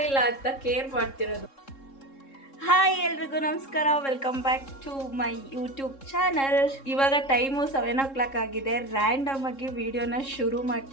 ಅಂತ ಕೇರ್ ಮಾಡ್ತಿರೋದು. ಹಾಯ್ ಎಲ್ರಿಗೂ ನಮಸ್ಕಾರ, welcome back to my YouTube channel. ಇವಾಗ ಟೈಮು 7 o'clock ಆಗಿದೆ. ರ್ಯಾಂಡಮ್ ಆಗಿ ವಿಡಿಯೋನ ಶುರು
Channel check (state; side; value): late; right; 3.7 ms